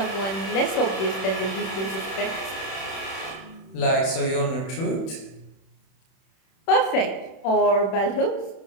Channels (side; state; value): right; late; 31 ms